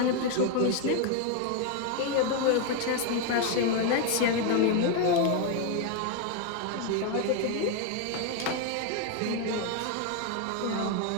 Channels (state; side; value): different; both; correlation 0.01